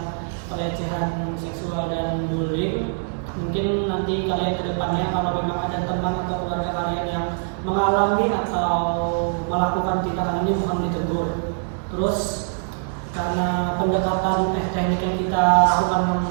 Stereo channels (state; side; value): silent; left; digital silence